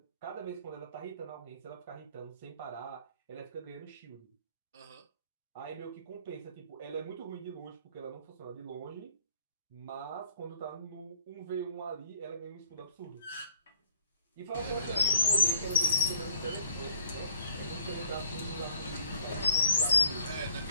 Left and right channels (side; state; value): both; inverted; correlation -0.61